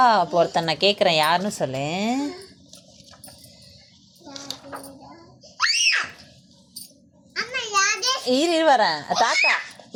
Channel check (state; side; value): identical; both; correlation 1.00